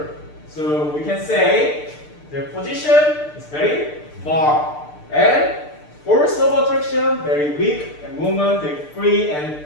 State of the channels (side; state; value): right; late; 6.7 ms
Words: So we can say their position is very far and force of attraction very weak and movement very free and